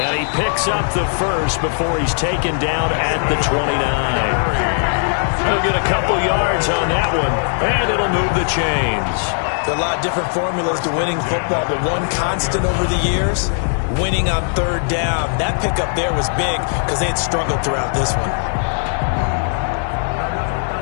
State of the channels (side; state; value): right; silent; 67 dB below the other